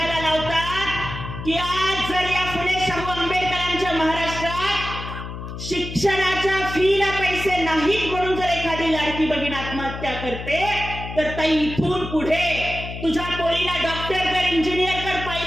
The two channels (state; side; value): noise; left; hum, 9 dB below the sound